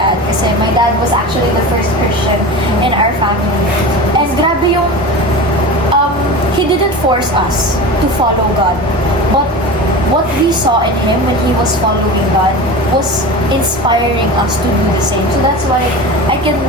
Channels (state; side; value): normal; both; correlation 0.30